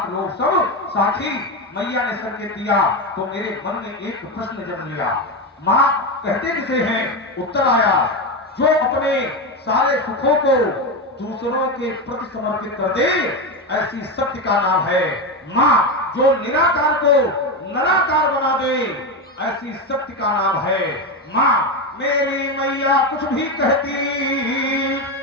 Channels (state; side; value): normal; both; correlation 0.14